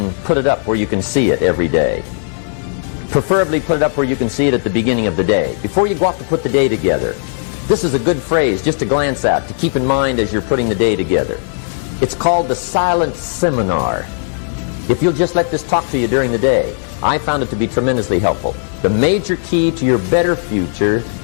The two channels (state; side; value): silent; right; 69 dB below the other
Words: put it up where you can see it every day. Preferably put it up where you can see it at the beginning of the day, before you go off to put the day together. This is a good phrase just to glance at, to keep in mind as you're putting the day together. It's called the silent seminar. If you'll just let this talk to you during the day, I found it to be tremendously helpful. The major key to your better future